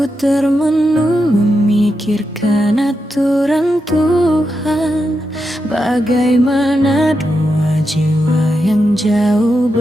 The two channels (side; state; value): both; normal; correlation 0.86